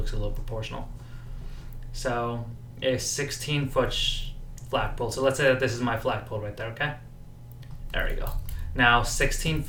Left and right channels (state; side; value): identical; both; correlation 1.00